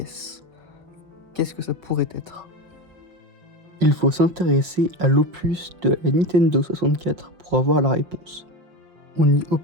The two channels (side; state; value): left; late; 5.6 ms